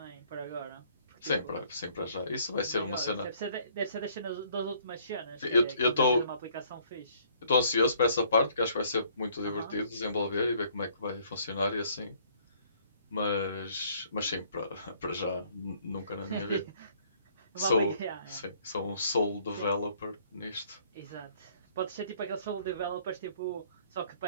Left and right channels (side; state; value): both; inverted; correlation -0.62